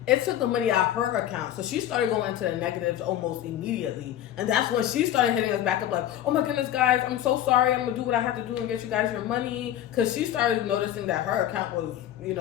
it took the money out of her account. So she started going into the negatives almost immediately. And that's when she started hitting us back up like, oh my goodness, guys, I'm so sorry. I'm going to do what I have to do and get you guys your money. Because she started noticing that her account was,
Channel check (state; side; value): quieter; right; 11.8 dB